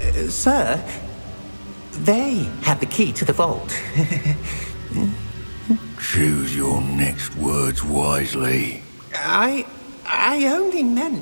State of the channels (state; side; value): inverted; both; correlation -1.00